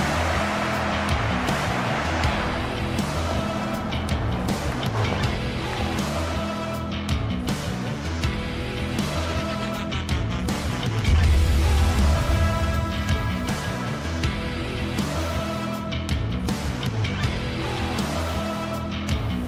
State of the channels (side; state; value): both; identical; correlation 1.00